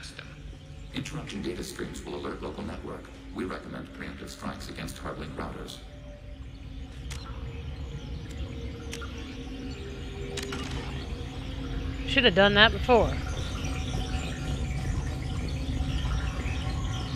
them. Interrupting data streams will alert local network. We recommend preemptive strikes against hard-link routers. Should have done that before.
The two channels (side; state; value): both; identical; correlation 1.00